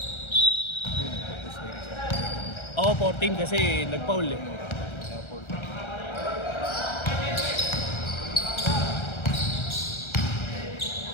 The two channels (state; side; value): late; right; 1.3 ms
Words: Oo, 14 kasi nag-foul eh.